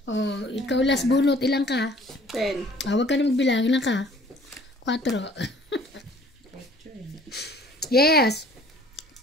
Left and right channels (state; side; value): normal; both; correlation 0.54